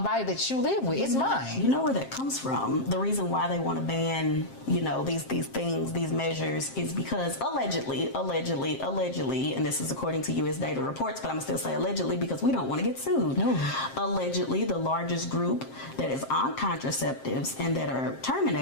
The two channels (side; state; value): right; late; 7.5 ms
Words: body that you live with. It's mine. You know where that comes from? The reason why they want to ban, you know, these things, these measures, is because allegedly, and this is according to U.S. data reports, but I'm going to still say allegedly because we don't want to get sued. Allegedly, the largest group that is on contraceptives and that are